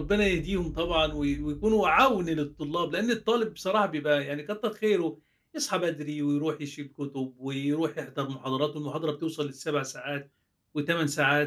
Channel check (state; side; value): identical; both; correlation 1.00